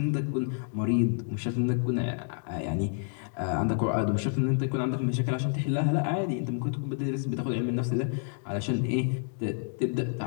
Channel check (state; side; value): silent; right; 59 dB below the other